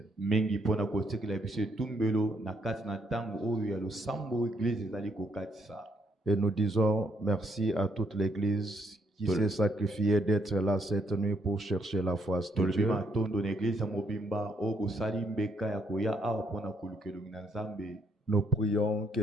Et nous disons merci à toute l'Église qui s'est sacrifiée d'être là cette nuit pour chercher la face de Dieu. Nous prions que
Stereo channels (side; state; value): both; normal; correlation 0.73